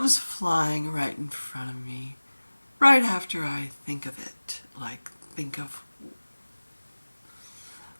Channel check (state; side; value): inverted; both; correlation -1.00